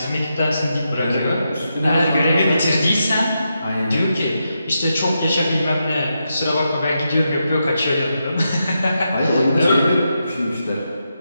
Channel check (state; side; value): inverted; both; correlation -0.85